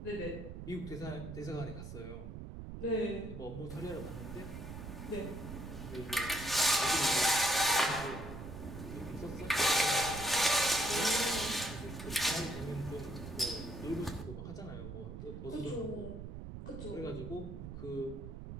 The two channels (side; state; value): right; noise; rumble, 9 dB below the sound